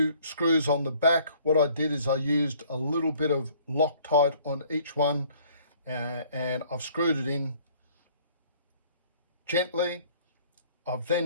screws on the back. What I did is I used a little bit of Loctite on each one, and I've screwed it in gently. I've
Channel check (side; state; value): both; inverted; correlation -0.57